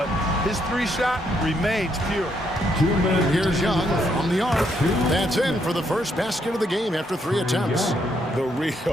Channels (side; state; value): both; normal; correlation 0.74